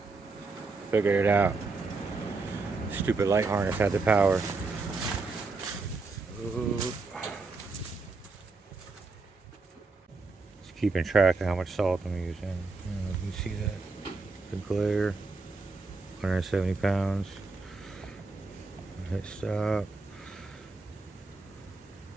Figured it out. Stupid light harness had the power. Ooh. Just keeping track of how much salt I'm using. You see that? The glare. 170 pounds. Hit stop.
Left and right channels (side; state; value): left; quieter; 3.9 dB